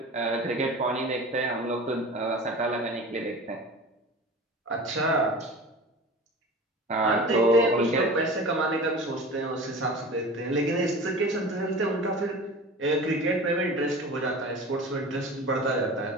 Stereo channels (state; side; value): normal; both; correlation 0.36